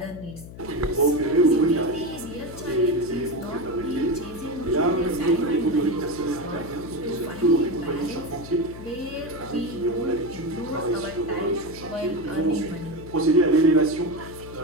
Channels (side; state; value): left; noise; hum, 15 dB below the sound